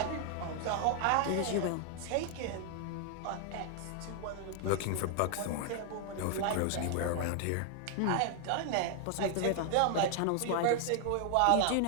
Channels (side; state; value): both; different; correlation 0.00